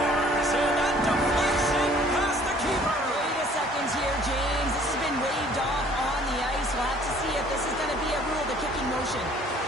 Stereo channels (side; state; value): both; normal; correlation 0.56